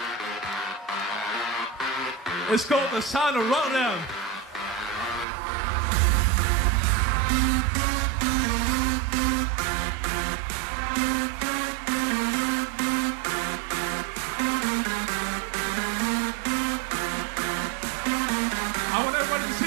It's called The Sound of Rotterdam. I want everybody to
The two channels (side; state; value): left; drops out; at 5.2 s